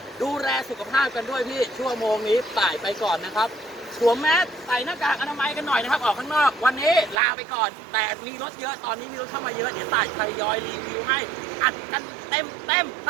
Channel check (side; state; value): left; drops out; at 7.2 s